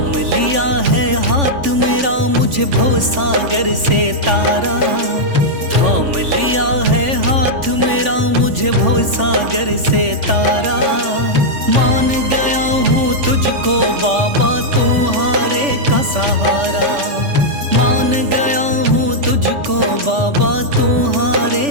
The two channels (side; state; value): left; late; 3.5 ms